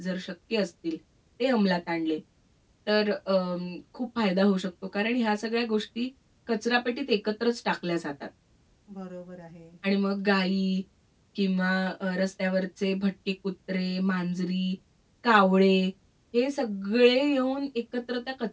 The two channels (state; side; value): identical; both; correlation 1.00